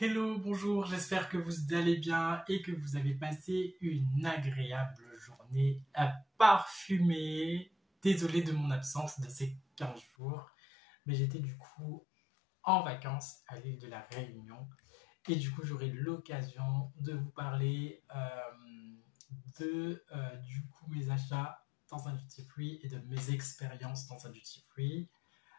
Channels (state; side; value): drops out; right; at 10.1 s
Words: bonjour, j'espère que vous allez bien et que vous avez passé une agréable journée à parfumer. Désolé de mon absence de ces 15 jours, mais j'étais du coup en vacances à l'île de la Réunion et du coup j'aurai l'occasion de vous parler de du coup mes achats dans un duty free et de mes expériences dans un duty free.